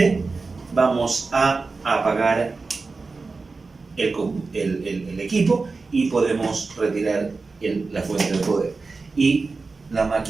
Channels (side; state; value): left; quieter; 4.0 dB